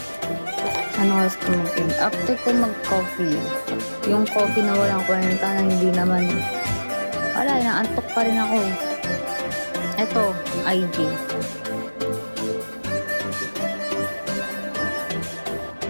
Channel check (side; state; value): both; inverted; correlation -1.00